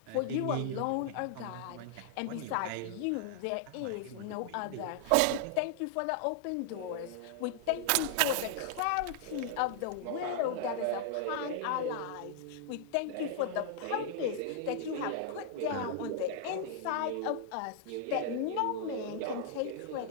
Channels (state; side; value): different; both; correlation 0.00